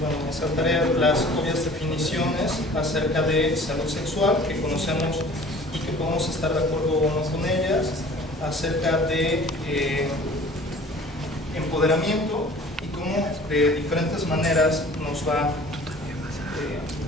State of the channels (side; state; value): both; normal; correlation 0.47